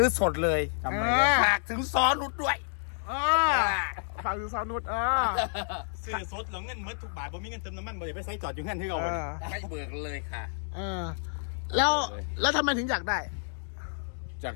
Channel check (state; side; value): silent; right; digital silence